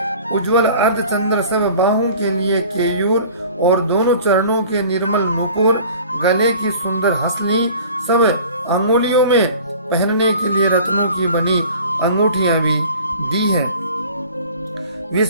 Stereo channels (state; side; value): inverted; both; correlation -0.45